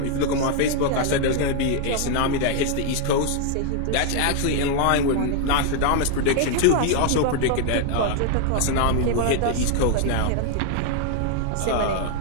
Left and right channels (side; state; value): both; different; correlation 0.00